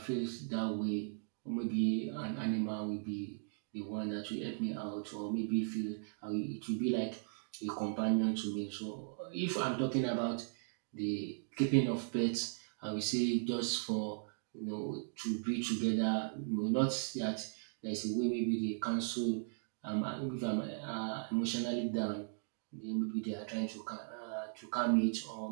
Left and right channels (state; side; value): silent; left; digital silence